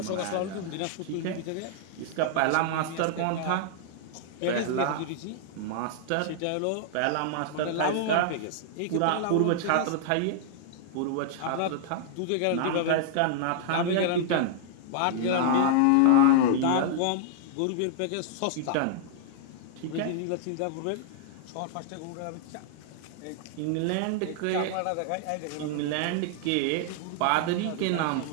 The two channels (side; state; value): both; different; correlation -0.01